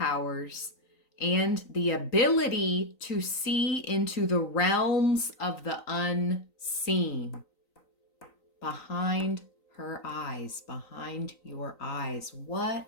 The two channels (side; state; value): right; late; 3.9 ms